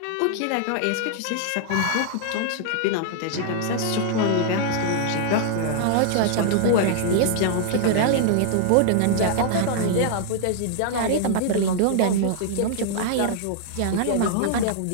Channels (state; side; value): different; both; correlation -0.01